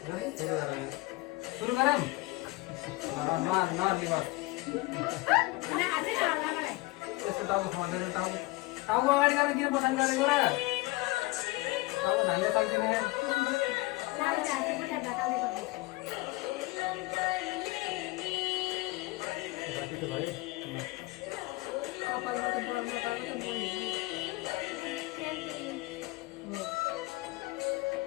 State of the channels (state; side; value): quieter; right; 21.7 dB